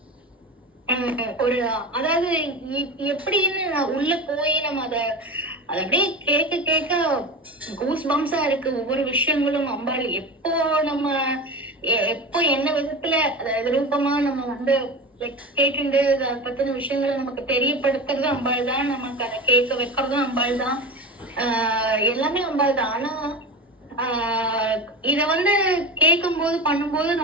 ஒரு அதாவது எப்படின்னு உள்ள போய் நம்ம அதை அப்படியே கேட்க கேட்க கூஸ் பம்ஸா இருக்கு ஒவ்வொரு விஷயங்களும். அம்பாள் எப்போ என்ன விதத்துல ரூபமா நம்ம வந்து கேட்டு அதை பத்தின விஷயங்களை நமக்கு தெரியப்படுத்துறது அம்பாள் தான், நமக்கு அதை கேட்க வைக்கிறதும் அம்பாள் தான், எல்லாமே அம்பாள் தான். ஆனா இத வந்து கேட்கும் போது பண்ணும்போது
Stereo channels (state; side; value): normal; both; correlation 0.27